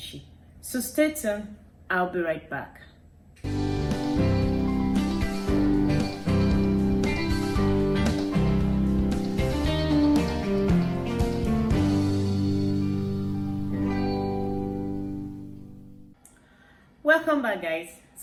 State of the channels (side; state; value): both; identical; correlation 1.00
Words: So stay tuned. I'll be right back. Welcome back, guys.